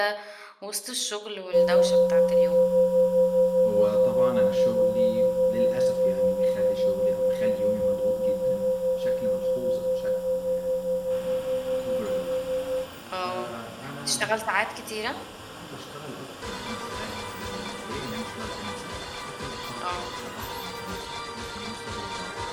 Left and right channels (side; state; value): both; identical; correlation 1.00